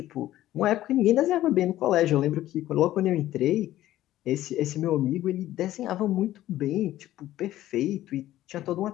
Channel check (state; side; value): quieter; right; 14.2 dB